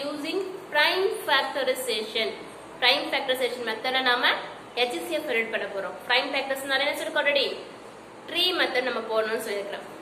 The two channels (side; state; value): both; identical; correlation 1.00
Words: prime factorization. Prime factorization method நாம HCF read பண்ண போறோம். Prime factorization என்ன சொல்லிருக்கோம் already? Tree method நம்ம போடணும்னு சொல்லிருக்கோம்.